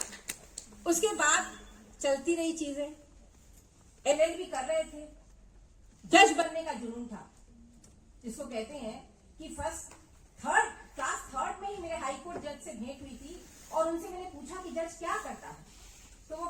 उसके बाद चलती रही चीजें, LLB कर रहे थे, जज बनने का जुनून था, जिसको कहते हैं कि क्लास थर्ड में ही मेरे हाई कोर्ट जज से भेंट हुई थी और उनसे मैंने पूछा कि जज क्या करता है, तो वो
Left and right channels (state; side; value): identical; both; correlation 1.00